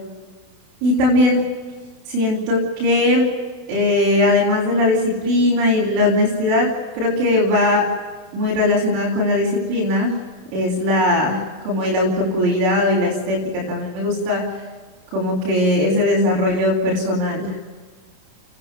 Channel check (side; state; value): left; late; 32 ms